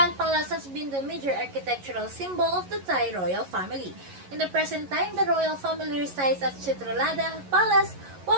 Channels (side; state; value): left; late; 11 ms